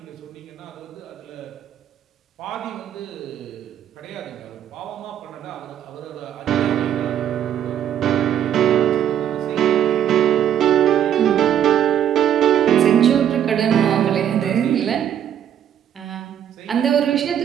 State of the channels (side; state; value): left; quieter; 10.0 dB